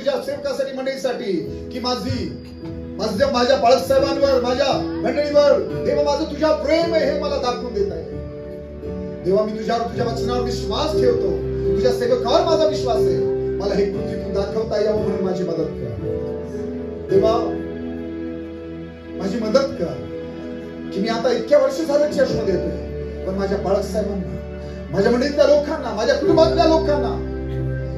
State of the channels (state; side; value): identical; both; correlation 1.00